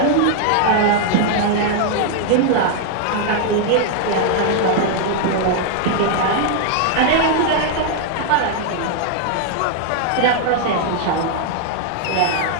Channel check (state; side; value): different; both; correlation 0.00